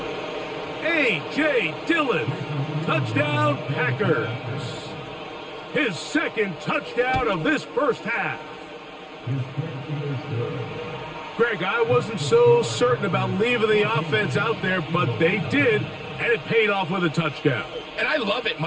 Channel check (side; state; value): both; identical; correlation 1.00